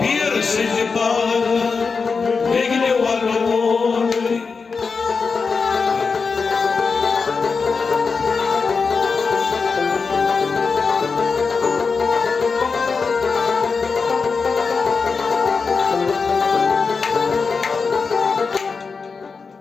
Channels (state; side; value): quieter; right; 4.9 dB